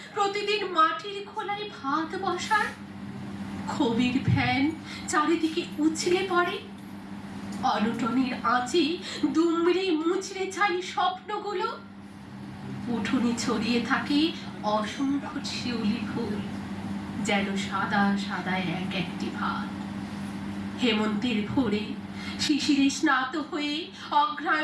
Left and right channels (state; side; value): identical; both; correlation 1.00